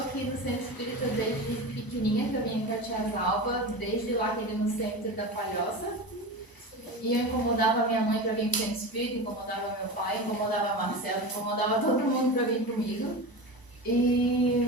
no Centro Espírita desde pequenininha, que eu vim em Catiazalva, desde lá que ele no Centro da Palhoça. E eu incomodava minha mãe para vir para o Centro Espírita, incomodava meu pai, incomodava a Marcela, incomodava todo mundo para vir comigo.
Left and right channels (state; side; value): late; right; 1.0 ms